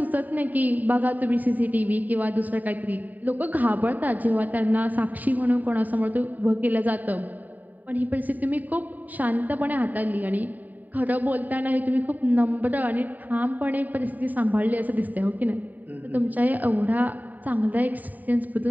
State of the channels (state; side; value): late; left; 0.083 ms